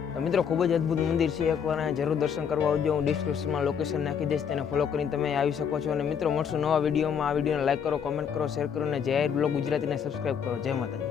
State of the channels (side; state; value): right; quieter; 7.4 dB